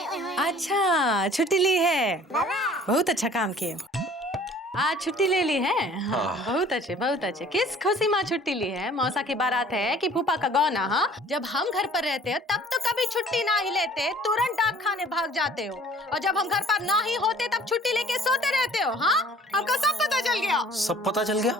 अच्छा, छुट्टी ली है, बहुत अच्छा काम किए। आज छुट्टी ले ली है? हाँ, बहुत अच्छे बहुत अच्छे। किस खुशी में छुट्टी ली है? मौसा की बारात है कि फूफा का गौना? हाँ, जब हम घर पर रहते हैं तब तो कभी छुट्टी ना ही लेते, तुरंत डाक खाने भाग जाते हो, और जब हम घर पर ना ही होते तब छुट्टी लेके सोते रहते हो। हाँ, हमको सब पता चल गया। सब पता चल गया?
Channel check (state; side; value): normal; both; correlation 0.51